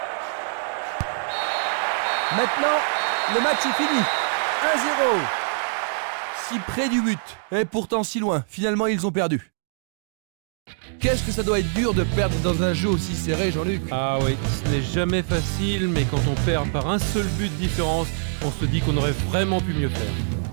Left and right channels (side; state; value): left; silent; digital silence